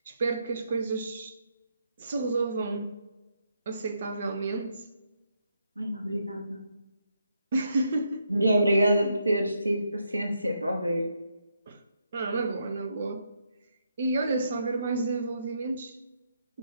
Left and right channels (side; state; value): both; inverted; correlation -0.78